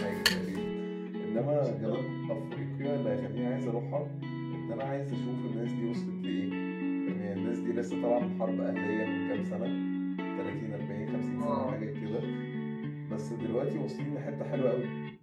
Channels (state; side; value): identical; both; correlation 1.00